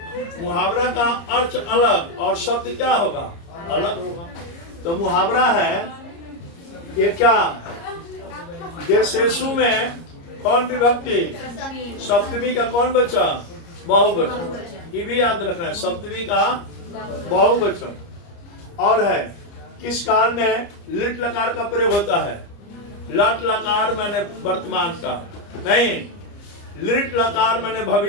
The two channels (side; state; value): right; late; 30 ms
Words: मुहावरा का अर्थ अलग और शब्द क्या होगा? अलग होगा। तो मुहावरा है ये क्या? देशेषु में कौन विभक्ति? सप्तमी का कौन बचा? बहुवचन। ये भी याद रखना है, सप्तमी का बहुवचन। और है किस काल में लिट लकार का प्रयोग होता है? लट लकार मैंने वर्तमान का नहीं, लिट लकार मैंने